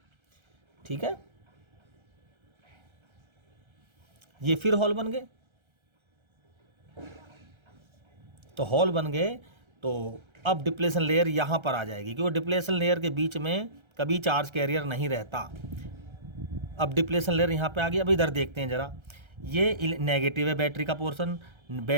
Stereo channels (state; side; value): late; left; 1.3 ms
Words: ठीक है, ये फिर हॉल बन गए। तो हॉल बन गए तो अब डिप्लेशन लेयर यहाँ पर आ जाएगी, क्योंकि डिप्लेशन लेयर के बीच में कभी चार्ज कैरियर नहीं रहता। अब डिप्लेशन लेयर यहाँ पे आ गई। अब इधर देखते हैं ज़रा, ये नेगेटिव है बैटरी का पोर्शन,